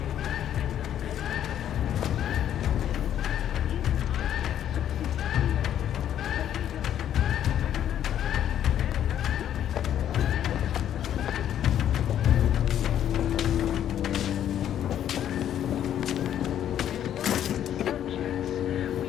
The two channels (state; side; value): quieter; right; 10.5 dB